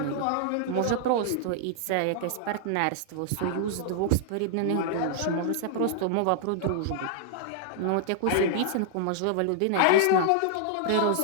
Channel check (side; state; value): both; different; correlation -0.01